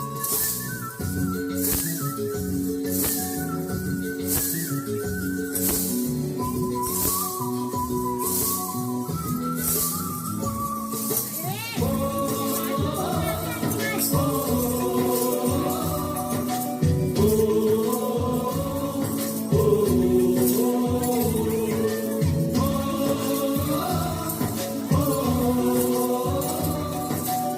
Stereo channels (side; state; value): both; identical; correlation 1.00